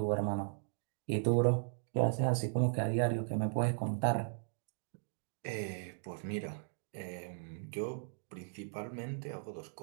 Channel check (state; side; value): silent; left; digital silence